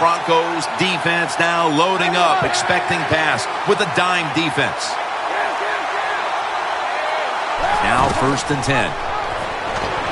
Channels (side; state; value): both; identical; correlation 1.00